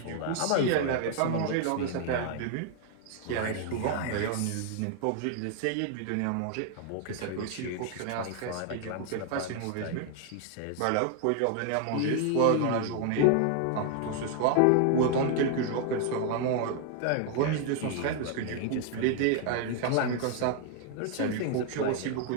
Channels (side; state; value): both; different; correlation 0.00